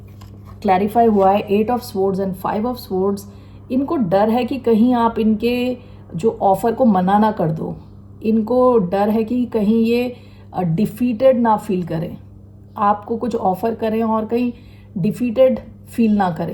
क्लैरिफाई हुआ है eight of swords and five of swords, इनको डर है कि कहीं आप इनके जो ऑफर को मना ना कर दो। इनको डर है कि कहीं ये डिफीटेड ना फील करें, आपको कुछ ऑफर करें और कहीं डिफीटेड फील ना करें।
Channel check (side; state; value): both; identical; correlation 1.00